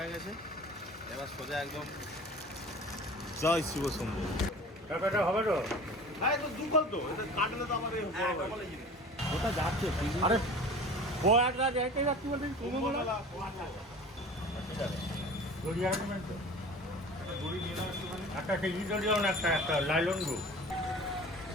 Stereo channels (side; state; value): both; normal; correlation 0.41